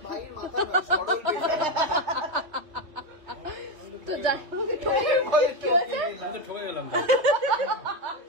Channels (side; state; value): left; late; 3.2 ms